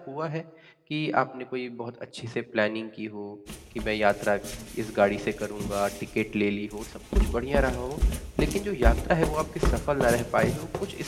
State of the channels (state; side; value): identical; both; correlation 1.00